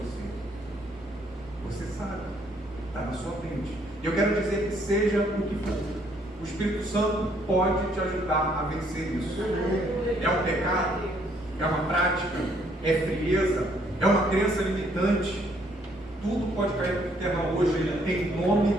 Você sabe. Está na sua mente. E eu quero dizer que seja o que for, o Espírito Santo pode te ajudar a vencer isso. É um pecado? É uma prática? É frieza? É uma crença limitante? Tudo pode cair por terra hoje, em nome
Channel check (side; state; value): both; normal; correlation 0.67